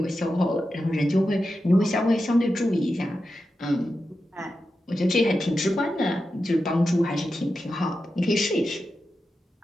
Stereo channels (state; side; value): normal; both; correlation 0.90